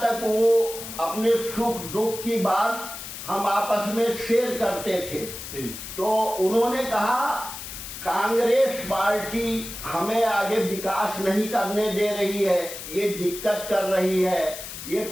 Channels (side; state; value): left; noise; hiss, 10 dB below the sound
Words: तक वो अपने सुख दुख की बात हम आपस में शेयर करते थे। तो उन्होंने कहा, कांग्रेस पार्टी हमें आगे विकास नहीं करने दे रही है, ये दिक्कत कर रही है, ये